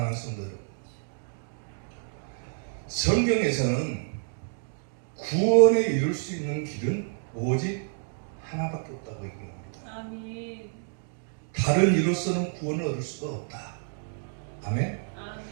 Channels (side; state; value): left; silent; digital silence